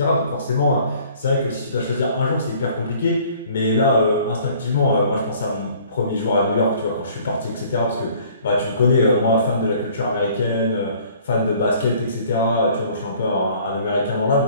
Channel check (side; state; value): both; inverted; correlation -0.55